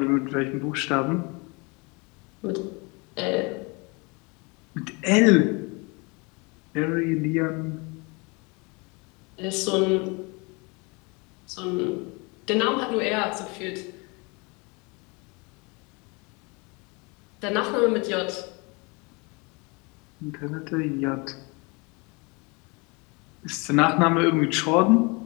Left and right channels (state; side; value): quieter; right; 29.1 dB